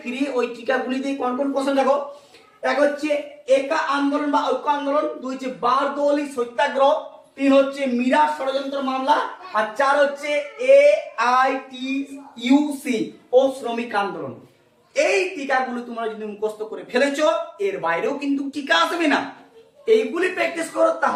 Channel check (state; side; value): identical; both; correlation 1.00